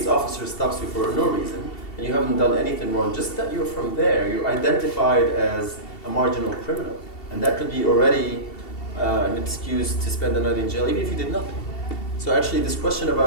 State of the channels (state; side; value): late; right; 2.7 ms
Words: officer stops you for no reason, and you haven't done anything wrong, just that you're from there, you're identified as a marginal criminal. And that could be already an excuse to spend the night in jail, even if you did nothing. So actually this question